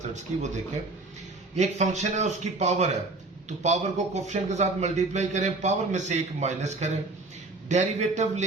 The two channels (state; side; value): quieter; left; 3.2 dB